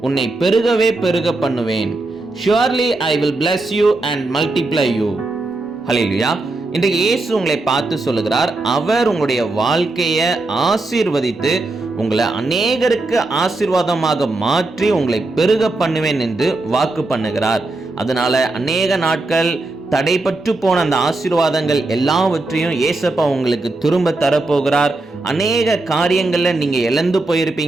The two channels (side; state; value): left; quieter; 3.0 dB